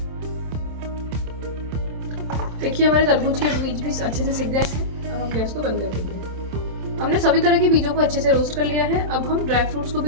देखिए हमारे तरबूज के बीज भी अच्छे से सिक गए हैं। अब हम गैस को बंद कर देंगे। हमने सभी तरह के बीजों को अच्छे से रोस्ट कर लिया है। अब हम ड्राई फ्रूट्स को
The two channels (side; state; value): left; late; 27 ms